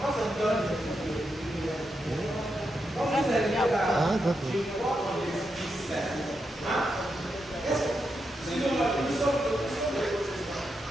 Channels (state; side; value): normal; both; correlation 0.85